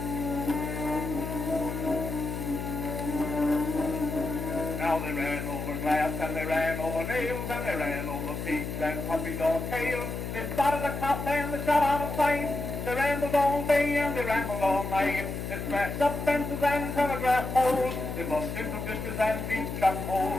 Now they ran over glass, and they ran over nails, and they ran over pigs and puppies or tails. They spotted a cop and they shot out of sight. They rambled all day and they rambled all night. They smashed up fences and telegraph poles. They bumped into ditches and deep shut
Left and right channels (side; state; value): left; noise; hum, 5 dB below the sound